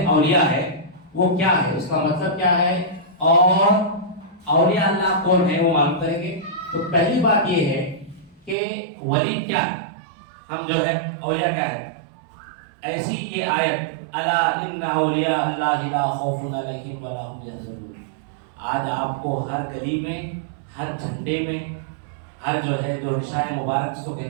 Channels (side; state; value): left; drops out; at 8.6 s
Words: اولیاء ہے، وہ کیا ہے، اس کا مطلب کیا ہے، اور اولیاء اللہ کون ہے وہ معلوم کریں گے۔ تو پہلی بات یہ ہے کہ ولی کیا ہے، ہم جو ہے اولیاء کیا ہے۔ ایسی یہ آیت، الا ان اولیاء اللہ لا خوف علیہم ولا هم يحزنون، آج آپ کو ہر گلی میں، ہر جھنڈے میں، ہر جو ہے جو نشان مبارک جس کو